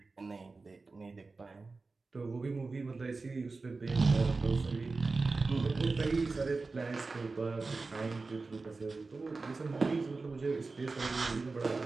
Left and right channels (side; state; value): left; quieter; 3.9 dB